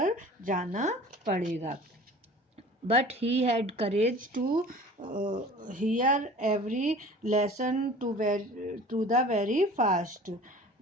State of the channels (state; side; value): normal; both; correlation 0.43